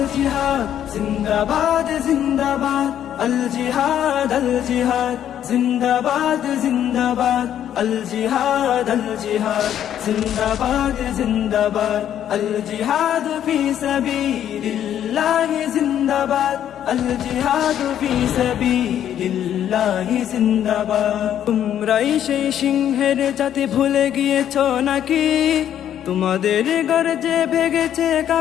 زندباد زندباد الجهاد الجهاد زندباد زندباد الجهاد الجهاد زندباد زندباد الجهاد في سبيل الله زندباد الجهاد في سبيل الله زندباد তোমরাই সেই সিংহের জাতি ভুলে গিয়েছো নাকি তোমাদের গর্জে ভেগেছে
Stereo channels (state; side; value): quieter; right; 10.4 dB